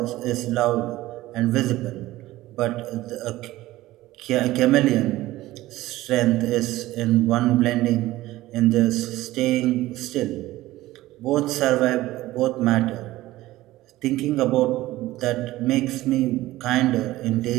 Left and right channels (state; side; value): quieter; left; 16.8 dB